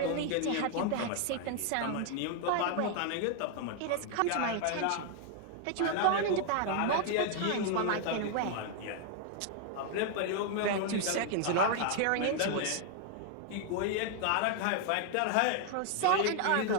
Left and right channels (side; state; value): both; different; correlation 0.00